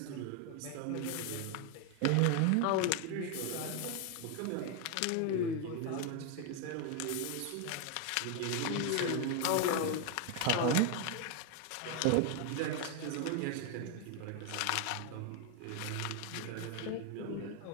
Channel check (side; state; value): both; different; correlation 0.01